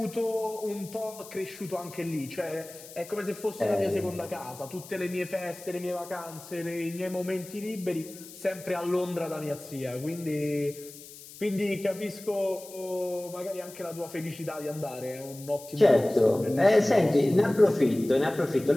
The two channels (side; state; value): left; noise; hiss, 17 dB below the sound